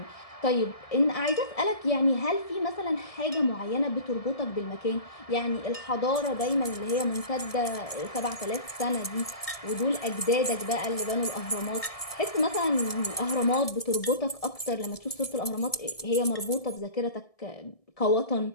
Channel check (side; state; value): right; late; 1.7 ms